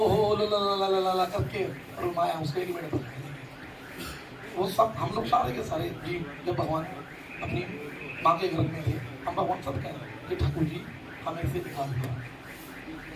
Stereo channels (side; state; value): both; identical; correlation 1.00